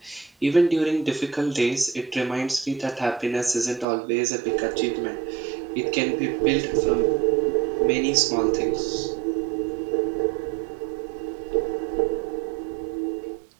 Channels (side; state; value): left; drops out; at 3.9 s